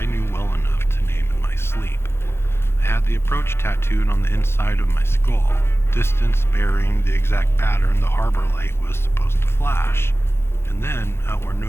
knew well enough to name in my sleep. I had the approach tattooed on the inside of my skull. Distance, bearing, the exact pattern the harbor light was supposed to flash. And then, out where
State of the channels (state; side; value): late; right; 0.12 ms